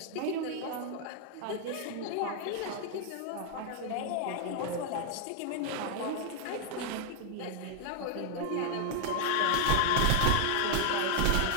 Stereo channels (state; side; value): different; both; correlation 0.00